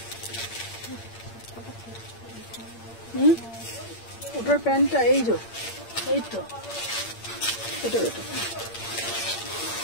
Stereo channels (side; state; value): right; late; 8.7 ms